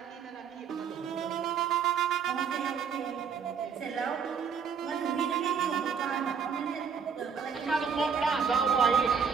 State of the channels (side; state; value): left; quieter; 6.5 dB